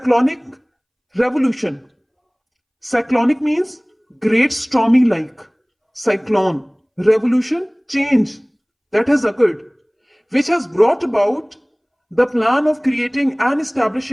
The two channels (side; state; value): both; identical; correlation 1.00